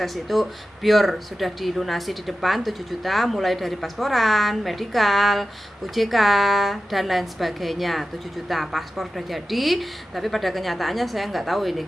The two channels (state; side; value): normal; both; correlation 0.94